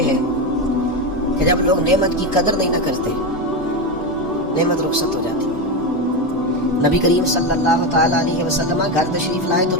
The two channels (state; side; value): normal; both; correlation 0.14